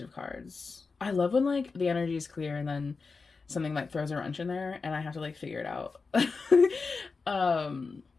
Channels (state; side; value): quieter; right; 4.5 dB